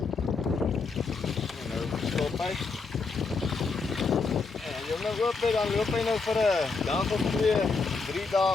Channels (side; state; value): right; quieter; 4.4 dB